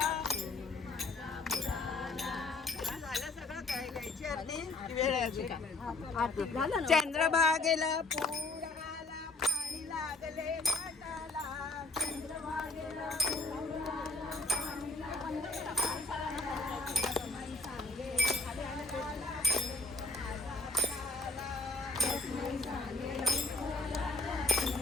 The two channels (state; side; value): quieter; right; 3.2 dB